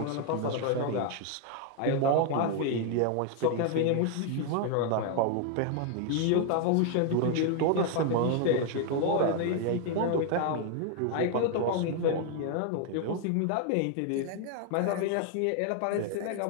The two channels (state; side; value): different; both; correlation 0.00